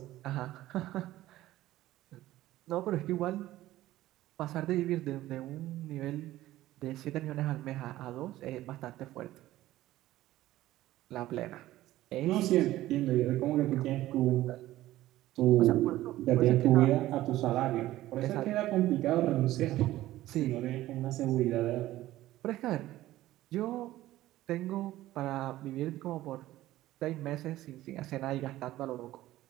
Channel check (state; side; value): quieter; left; 15.4 dB